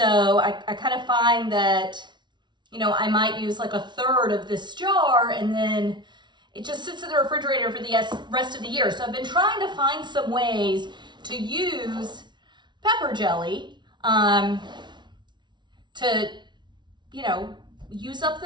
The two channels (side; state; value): left; late; 0.22 ms